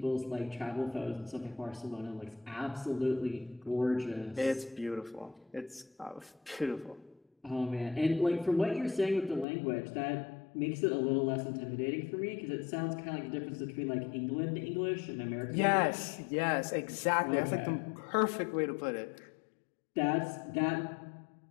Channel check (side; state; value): right; drops out; at 9.5 s